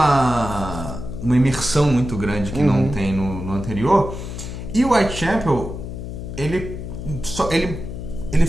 imersão muito grande que não tem no anterior. E o Whitechapel, ele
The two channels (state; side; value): noise; left; hum, 8 dB below the sound